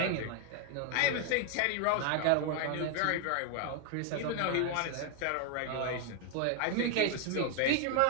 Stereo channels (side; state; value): both; different; correlation 0.01